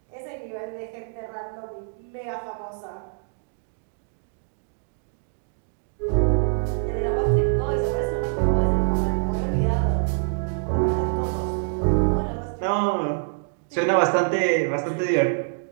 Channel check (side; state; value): left; silent; digital silence